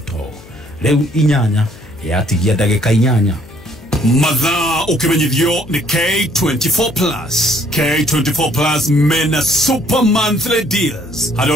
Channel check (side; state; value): left; noise; hum, 21 dB below the sound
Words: riu inyanya yatigia ndagika inyanya. Mathaa ukimenyithio ni K24 Plus. K24 Plus mena super monthly deals.